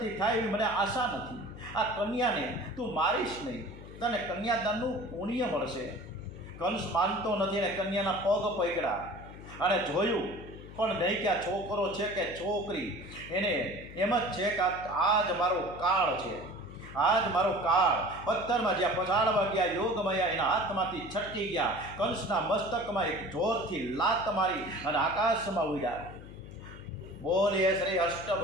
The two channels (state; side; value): noise; left; hum, 15 dB below the sound